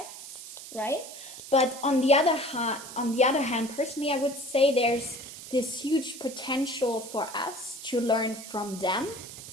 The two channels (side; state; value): right; noise; hiss, 13 dB below the sound